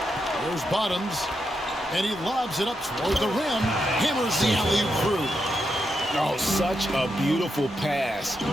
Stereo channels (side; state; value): both; normal; correlation 0.84